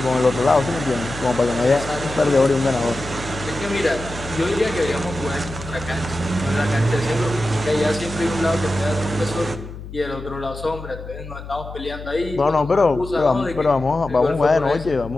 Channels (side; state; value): left; noise; hum, 12 dB below the sound